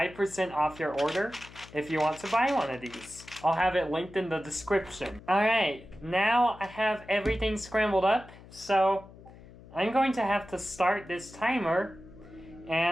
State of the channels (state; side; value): noise; left; hum, 20 dB below the sound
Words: off your order if you want to buy one of these. I'll have it linked in the description. Alright, now I have everything scrambled up, so I'm going to have to start this timer